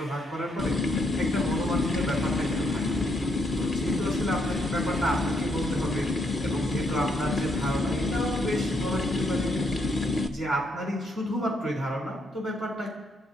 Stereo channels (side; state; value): both; normal; correlation 0.74